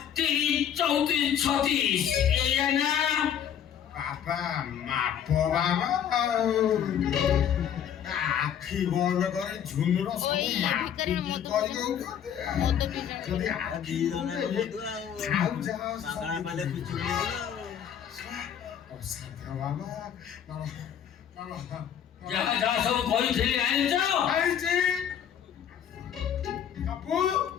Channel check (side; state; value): right; quieter; 9.1 dB